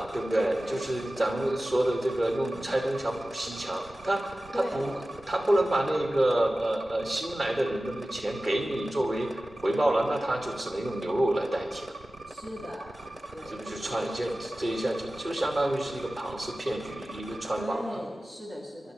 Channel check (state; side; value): normal; both; correlation 0.96